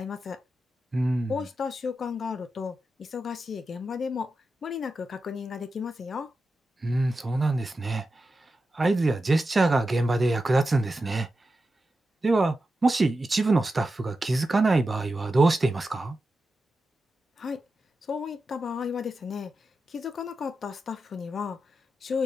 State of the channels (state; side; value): normal; both; correlation 0.91